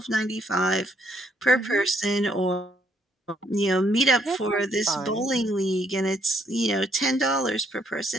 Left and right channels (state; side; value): normal; both; correlation 0.70